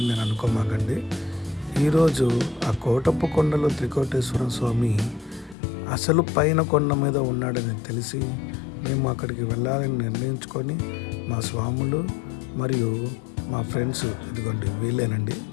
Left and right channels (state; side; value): drops out; right; at 5.6 s